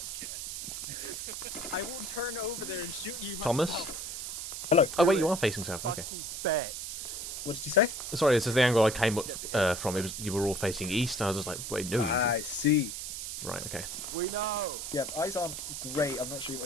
I will turn over there and shoot you myself. Thomas? Hello. Oh, wait, you are facing south. Okay. Fucking bet. What did you say? Sorry, this is the angle I came up from. It was you were all facing east. I was just like, wait, no. I see. Right, okay. We know. Yeah, eyes aren't great. I'm not sure what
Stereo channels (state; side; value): noise; right; hiss, 6 dB below the sound